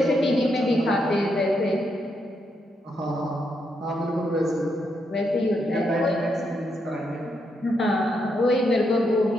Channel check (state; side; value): normal; both; correlation 0.80